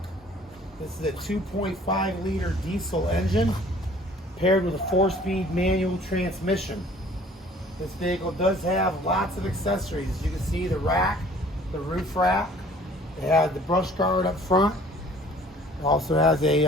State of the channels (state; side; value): normal; both; correlation 0.52